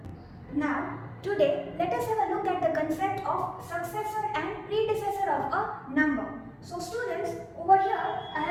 Now today, let us have a look at the concept of successor and predecessor of a number. So students, over here I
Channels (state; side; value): identical; both; correlation 1.00